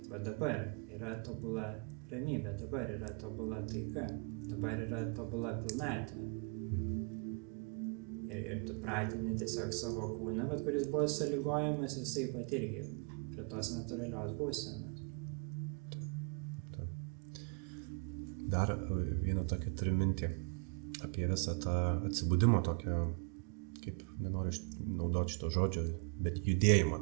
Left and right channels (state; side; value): quieter; left; 36.0 dB